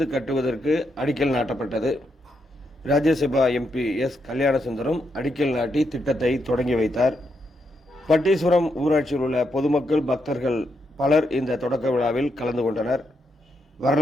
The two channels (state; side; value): normal; both; correlation 0.80